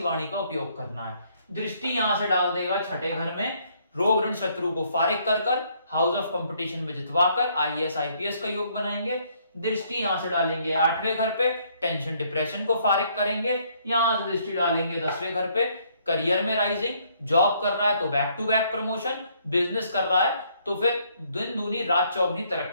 का उपयोग करना है। दृष्टि यहां से डाल देगा 6ठे घर में, रोग ऋण शत्रु को फारिग कर कर, हाउस ऑफ कंपटीशन में जितवाकर आईएएस आईपीएस का योग बनाएंगे। दृष्टि यहां से डालेंगे 8वें घर पे, टेंशन डिप्रेशन को फारिग करेंगे। यहां से दृष्टि डालेंगे 10वें घर पे, करियर में राइजिंग, जॉब कर रहा है तो back to back promotion, business कर रहा है तो फिर दिन दूनी रात चौगनी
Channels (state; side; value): inverted; both; correlation -0.67